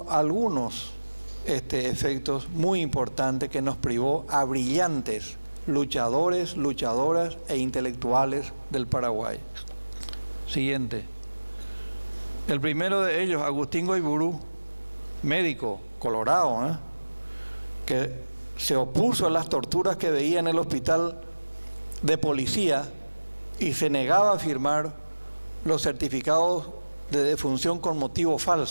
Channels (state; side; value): inverted; both; correlation -1.00